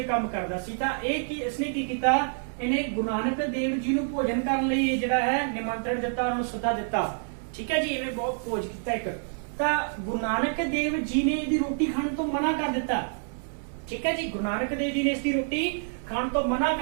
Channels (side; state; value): left; silent; digital silence